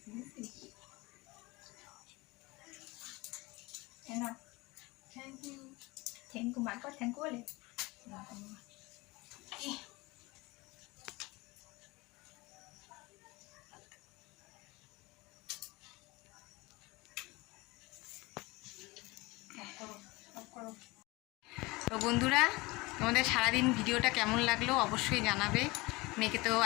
না। Thank you. থ্যাংক ইউ মার কর, থ্যাংক ইউ বলে। তো বন্ধুরা, তোমাদের সারাদিন ভিডিওটা কেমন লাগলো অবশ্যই জানাবে। মেয়েকে তো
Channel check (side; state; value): right; quieter; 23.0 dB